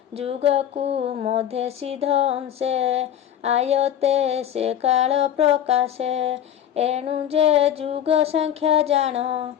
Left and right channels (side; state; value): right; quieter; 10.2 dB